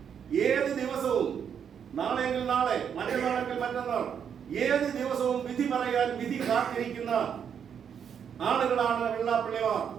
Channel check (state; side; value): quieter; left; 7.8 dB